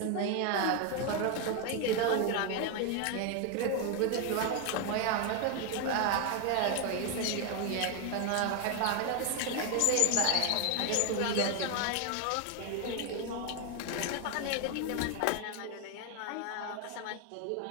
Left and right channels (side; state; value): both; different; correlation 0.01